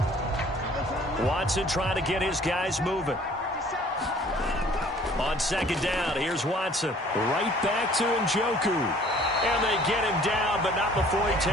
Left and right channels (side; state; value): both; normal; correlation 0.54